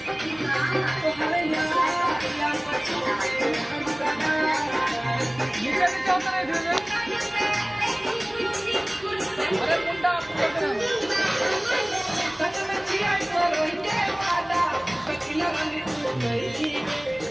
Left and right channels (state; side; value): noise; right; hum, 27 dB below the sound